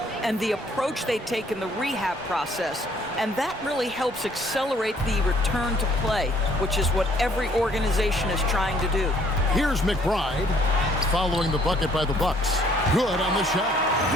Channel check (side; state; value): both; normal; correlation 0.62